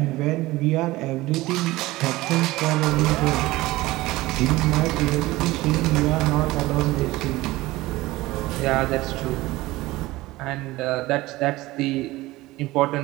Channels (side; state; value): left; quieter; 18.9 dB